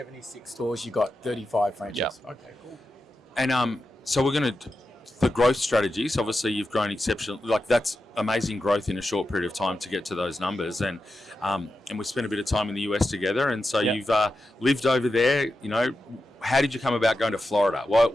stores, you got 35 franchises. Yeah. Okay, cool. And so we're going to the growth strategies. Obviously, you've grown exceptional. Like that's amazing growth in a short period of time to get to those numbers. And we spent a bit of time in the US together. And so you've lived over there. You know, how did you come about going to Florida?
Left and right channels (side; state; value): both; normal; correlation 0.90